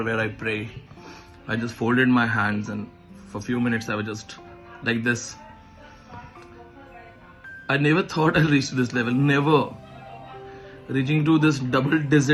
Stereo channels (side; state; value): both; identical; correlation 1.00